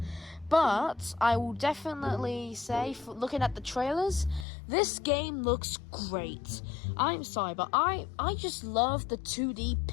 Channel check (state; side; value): drops out; right; at 4.5 s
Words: But I will definitely say, looking at the trailers, this game looks great. I'm sorry, but I just love the 2D